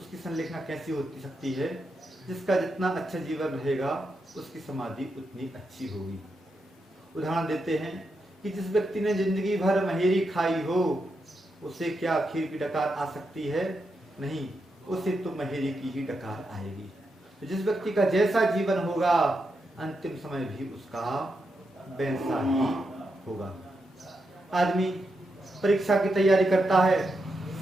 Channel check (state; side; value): normal; both; correlation 0.85